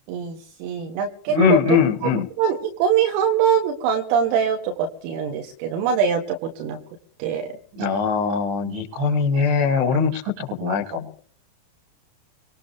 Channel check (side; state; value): left; late; 30 ms